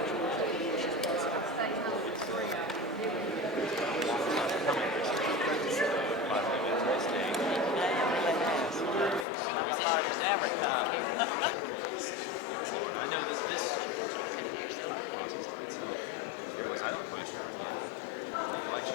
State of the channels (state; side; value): drops out; right; at 9.2 s